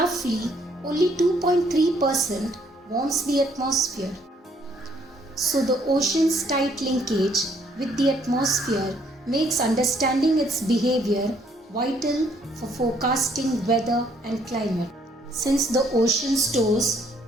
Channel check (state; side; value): normal; both; correlation 0.67